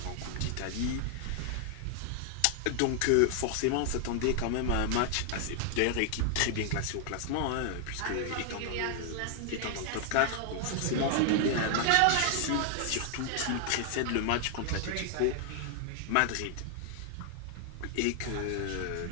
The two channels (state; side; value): different; both; correlation 0.00